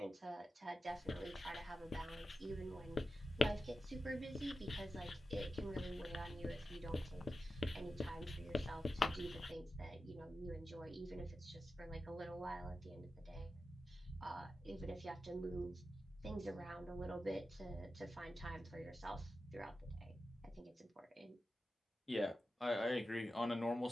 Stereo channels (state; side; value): normal; both; correlation 0.92